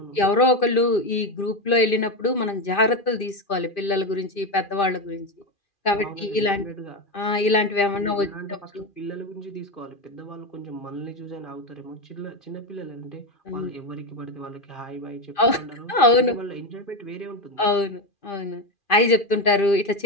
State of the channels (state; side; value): late; right; 2.4 ms